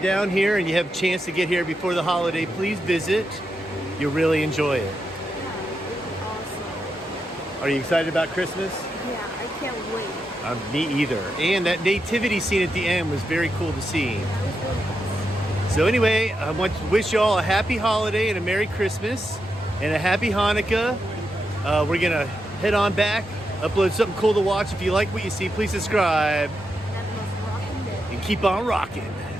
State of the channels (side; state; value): both; normal; correlation 0.85